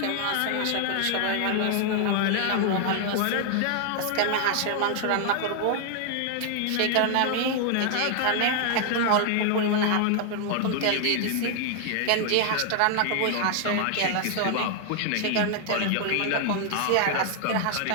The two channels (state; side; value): different; both; correlation 0.00